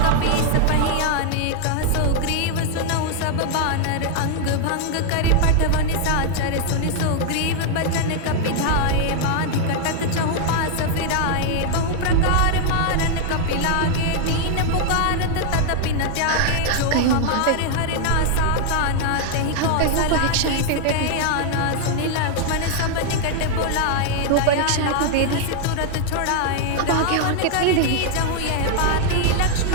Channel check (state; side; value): different; both; correlation 0.00